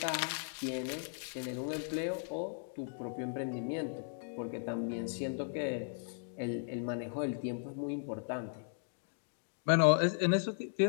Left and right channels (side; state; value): right; silent; digital silence